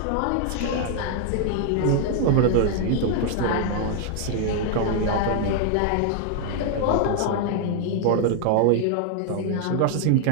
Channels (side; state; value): both; different; correlation 0.00